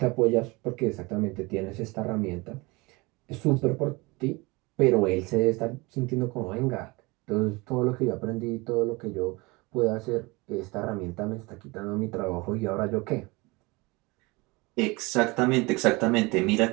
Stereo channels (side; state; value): left; quieter; 24.7 dB